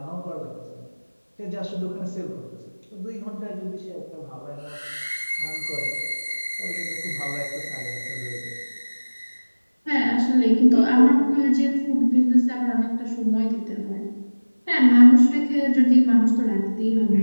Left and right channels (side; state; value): both; inverted; correlation -1.00